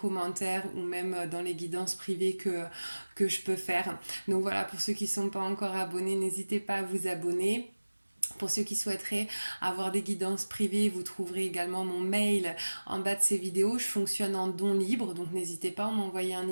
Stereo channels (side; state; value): both; inverted; correlation -1.00